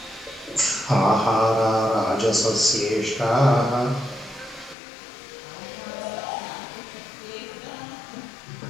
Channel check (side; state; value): right; drops out; at 4.8 s